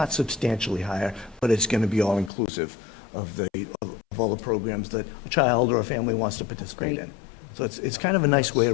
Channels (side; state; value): right; drops out; at 2.3 s